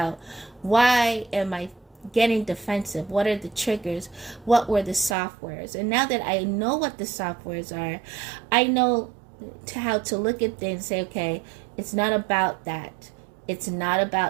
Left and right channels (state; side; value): drops out; left; at 5.2 s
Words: why am I getting defensive? What are the triggers? What were the softwares? And now that I know what the softwares are, I know how to look at things and say, okay, it's not about that. It's not